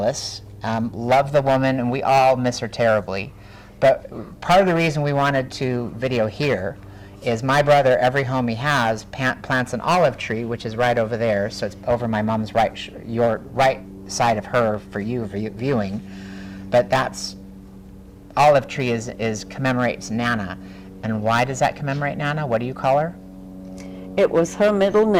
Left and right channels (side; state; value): both; identical; correlation 1.00